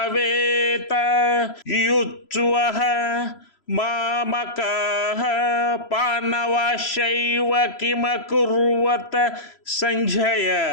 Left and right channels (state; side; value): late; right; 3.0 ms